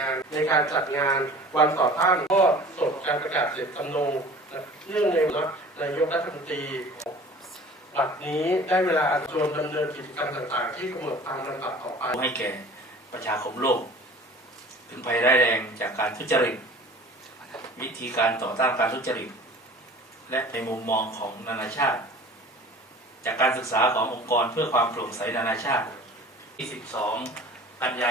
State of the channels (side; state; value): both; normal; correlation 0.44